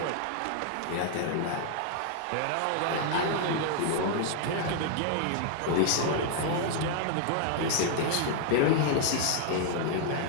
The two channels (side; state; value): both; different; correlation -0.01